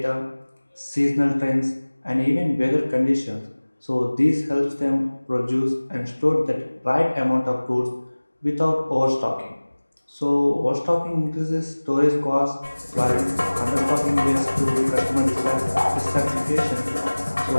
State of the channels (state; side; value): inverted; both; correlation -1.00